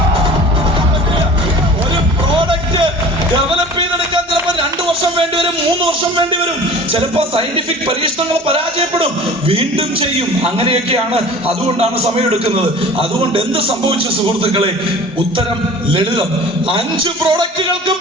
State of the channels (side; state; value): both; normal; correlation 0.42